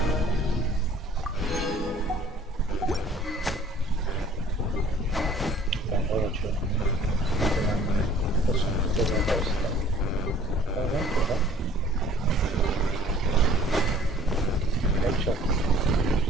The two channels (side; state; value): both; normal; correlation 0.53